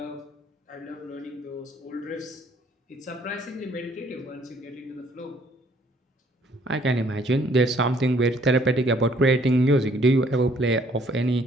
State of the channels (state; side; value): normal; both; correlation 0.62